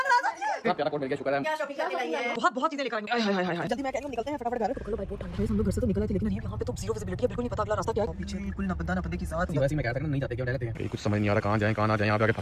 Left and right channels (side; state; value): both; identical; correlation 1.00